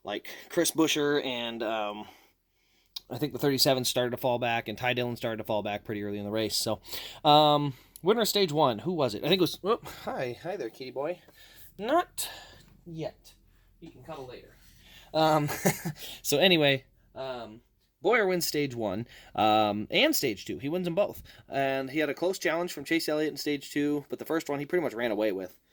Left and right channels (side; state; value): both; identical; correlation 1.00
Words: like Chris Buescher and I think the 37 started to fall back, and Ty Dillon started to fall back pretty early in the race. So, winner of stage one, who was it? I think it was. Oh, hi there, kitty boy. Not yet. You can cuddle later. So anyway. Boyer wins stage one and stage two. He wins them both. And he had a close challenge from Chase Elliott in stage two, but the first one he pretty much ran away with.